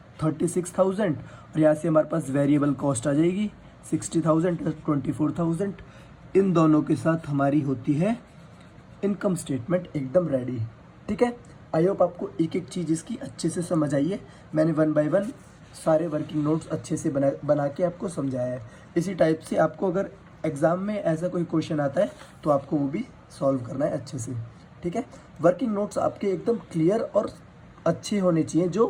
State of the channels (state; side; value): identical; both; correlation 1.00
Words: 36,000 और यहाँ से हमारे पास वेरिएबल कॉस्ट आ जाएगी 60,000 + 24,000। इन दोनों के साथ हमारी होती है इनकम स्टेटमेंट एकदम रेडी, ठीक है। आई होप आपको एक एक चीज़ इसकी अच्छे से समझ आई है। मैंने 1 बाय 1 सारे वर्किंग नोट्स अच्छे से बना के आपको समझाया है। इसी टाइप से आपको अगर एग्ज़ाम में ऐसा कोई क्वेश्चन आता है तो आपको वो भी सॉल्व करना है अच्छे से, ठीक है। वर्किंग नोट्स आपके एकदम क्लियर और अच्छे होने चाहिए,